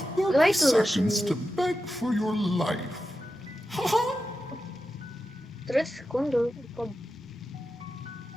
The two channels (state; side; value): normal; both; correlation 0.90